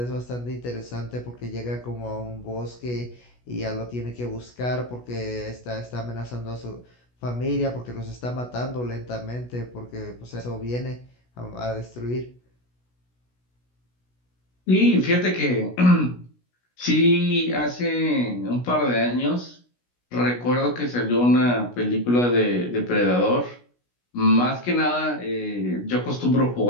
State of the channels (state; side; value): late; right; 16 ms